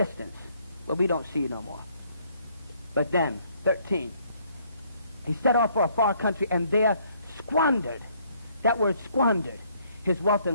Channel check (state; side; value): inverted; both; correlation -0.66